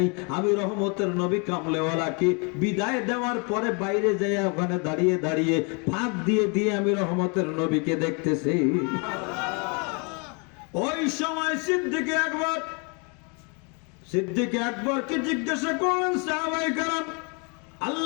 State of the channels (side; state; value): right; quieter; 34.0 dB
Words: আমি রহমতের নবী কামলেওয়ালাকে বিদায় দেওয়ার পরে বাইরে যাই, ওখানে দাঁড়িয়ে দাঁড়িয়ে ফাঁক দিয়ে দিয়ে আমি রহমতের নবীকে দেখতেছি। ওই সময় সিদ্দিক আকবরকে জিজ্ঞাসা করলেন, সাহাবায়ে কেরাম